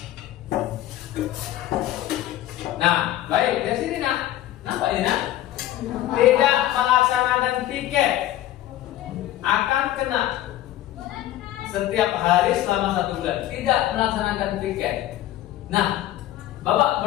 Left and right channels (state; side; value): quieter; right; 13.7 dB